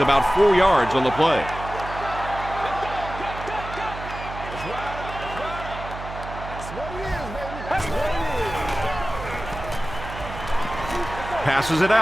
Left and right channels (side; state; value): right; noise; hum, 10 dB below the sound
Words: 4 yards on the play. Passes it